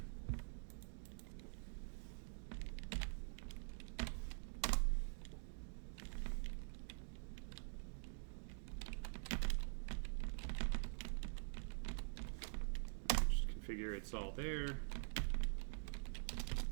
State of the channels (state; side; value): silent; left; digital silence